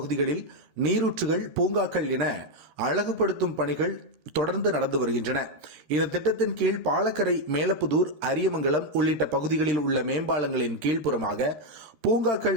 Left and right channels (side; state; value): left; late; 13 ms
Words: நீரூற்றுகள், பூங்காக்கள் என அழகுபடுத்தும் பணிகள் தொடர்ந்து நடந்து வருகின்றன. இந்த திட்டத்தின் கீழ் பாலக்கரை, மேலப்புதூர், அரியமங்கலம் உள்ளிட்ட பகுதிகளில் உள்ள மேம்பாலங்களின் கீழ்ப்புறமாக